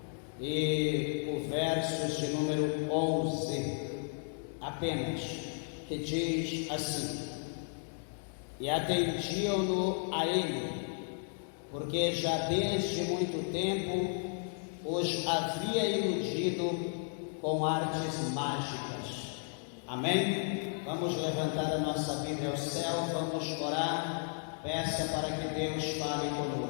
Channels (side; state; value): right; silent; 55 dB below the other